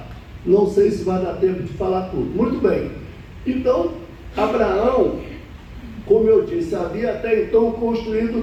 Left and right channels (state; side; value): identical; both; correlation 1.00